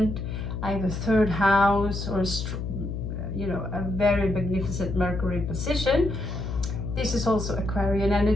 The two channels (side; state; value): left; noise; hum, 4 dB below the sound